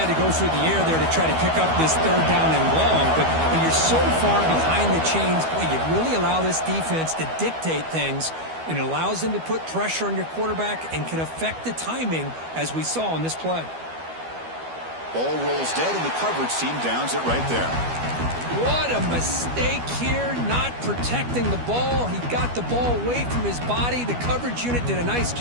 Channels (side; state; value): left; late; 12 ms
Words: to go through the air there to try to pick up this 3rd down and long, but when you're so far behind the chains, boy, you really allow this defense to dictate things, and it allows them to put pressure on your quarterback and can affect the timing, as we saw on this play. Ball rolls dead, and the coverage team downs it right there. What a mistake here, not protecting the ball. He got the ball away from his body. The coverage unit did a nice